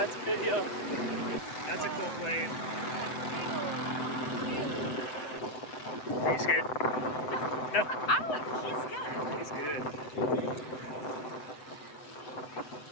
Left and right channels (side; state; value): right; late; 7.9 ms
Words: a video. That's a cool plane. Are you scared? No. Oh, He's good.